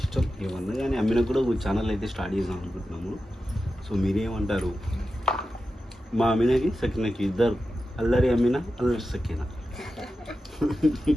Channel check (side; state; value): both; normal; correlation 0.92